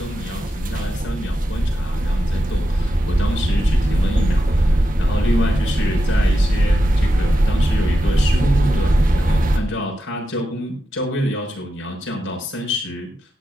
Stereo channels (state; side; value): normal; both; correlation 0.88